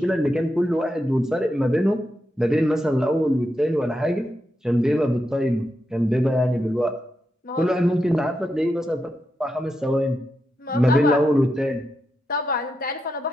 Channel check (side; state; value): both; normal; correlation 0.85